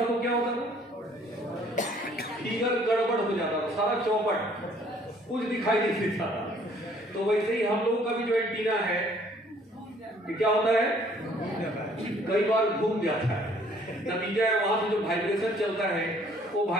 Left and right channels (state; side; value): normal; both; correlation 0.59